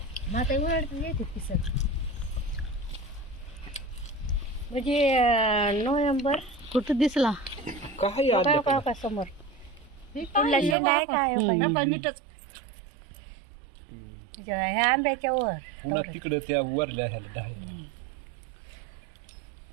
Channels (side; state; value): left; drops out; at 10.8 s